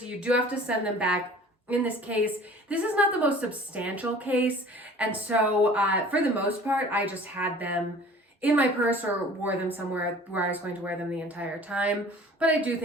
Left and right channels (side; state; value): both; normal; correlation 0.47